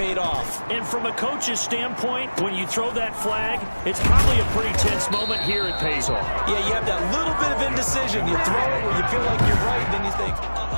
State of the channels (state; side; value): inverted; both; correlation -1.00